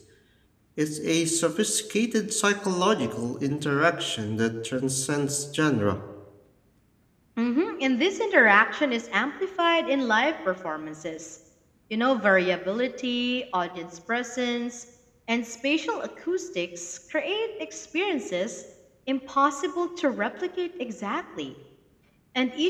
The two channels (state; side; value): identical; both; correlation 1.00